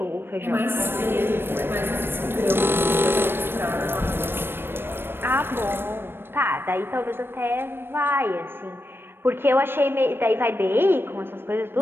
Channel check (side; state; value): left; late; 0.10 ms